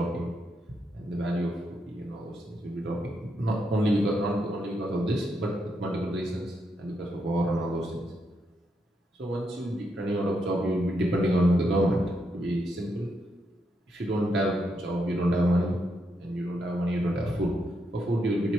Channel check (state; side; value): normal; both; correlation 0.80